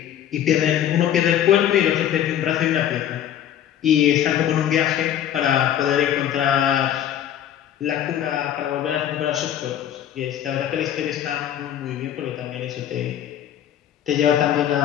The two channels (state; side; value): quieter; right; 10.7 dB